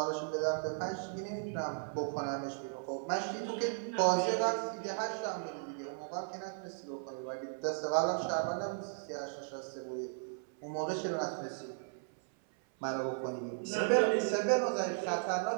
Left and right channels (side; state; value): left; silent; 54 dB below the other